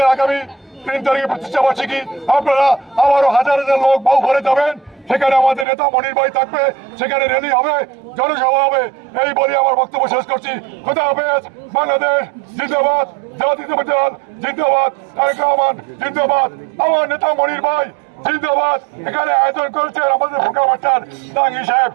আগামী 3 তারিখে প্রতিষ্ঠা বার্ষিকী, আপনারা আবারও হাজার হাজার লোক বাউফলে যাবেন, সেখানে আমাদের নেতা মনির ভাই থাকবে, সেখানে র্যালি হবে, জনসভা হবে। এই বলে আমার বক্তব্য শেষ করছি। খোদা হাফেজ। বাংলাদেশ জিন্দাবাদ, জাতীয়তাবাদী দল জিন্দাবাদ, তারেক রহমান জিন্দাবাদ, আমার নেতা মনির ভাই জিন্দাবাদ। এখানে আয়োজন করেছেন আমাদের ফোরকান মাস্টার, জাহাঙ্গীর সাহেব,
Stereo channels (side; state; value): left; drops out; at 5.7 s